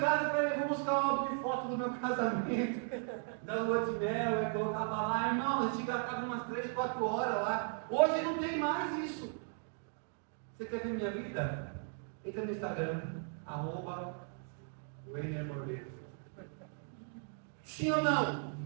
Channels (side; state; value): left; silent; 53 dB below the other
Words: e falava, eu vou buscar o álbum de foto do meu casamento, da lua de mel, e colocava lá, irmão, a gente gastava umas 3, 4 horas lá. Hoje não tem mais isso. Você quer ver minha vida? Entra no Instagram, @WeinerMordes. Sim ou não?